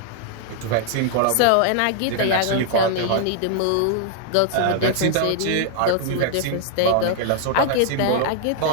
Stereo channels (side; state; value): both; different; correlation 0.00